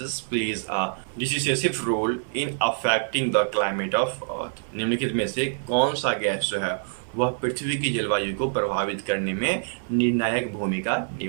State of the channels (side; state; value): left; silent; 61 dB below the other